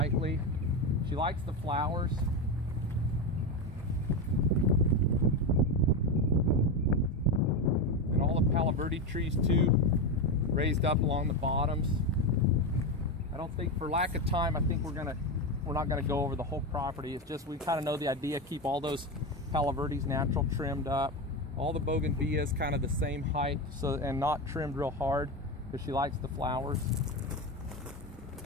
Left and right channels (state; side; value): normal; both; correlation 0.15